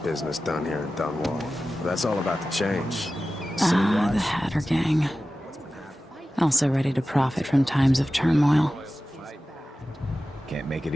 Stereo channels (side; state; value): both; normal; correlation 0.95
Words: business done here in Dunwall. But that's all about to change. Ah, the Hatter Gang. Also ready to profit from times of turmoil. Can't make it